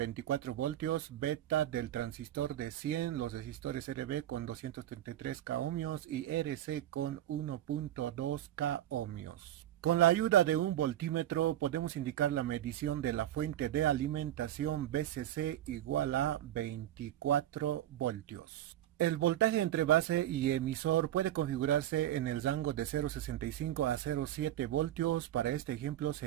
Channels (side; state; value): left; quieter; 12.6 dB